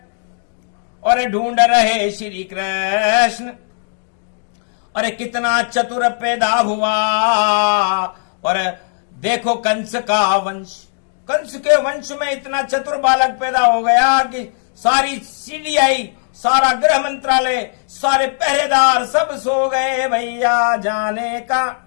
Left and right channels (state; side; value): silent; right; digital silence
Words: और ढूंढ रहे श्री कृष्ण। अरे कितना चतुर पैदा हुआ। और देखो कंस का वंश, कंस के वंश में इतना चतुर बालक पैदा हो गया कि सारी सीडीआई, सारा गृह मंत्रालय, सारे पहरेदार सब सो गए भैया, जाने का